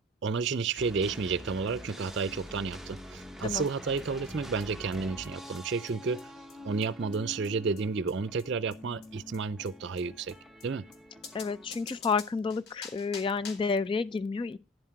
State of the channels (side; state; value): both; normal; correlation 0.34